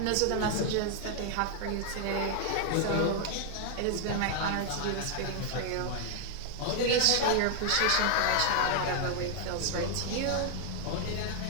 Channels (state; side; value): different; both; correlation 0.00